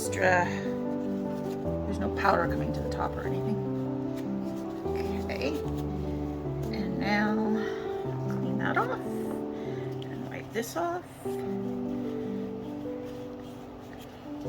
there's no powder coming to the top or anything. Okay, and now clean that off and wipe this off,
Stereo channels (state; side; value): identical; both; correlation 1.00